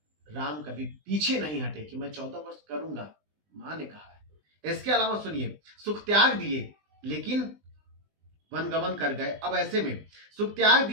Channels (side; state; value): left; late; 20 ms